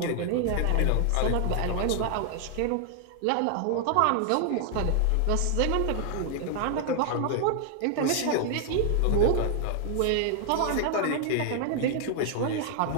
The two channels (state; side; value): different; both; correlation 0.00